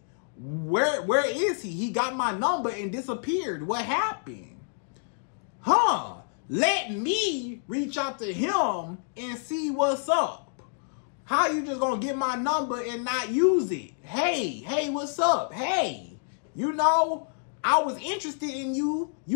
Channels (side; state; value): right; silent; digital silence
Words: Where is he? He got my number and disappeared. What happened? Huh, let me reach out to him and see what's up. How you just going to get my number and not use it? Hey, what's up? Hey, you know, I was interested in you.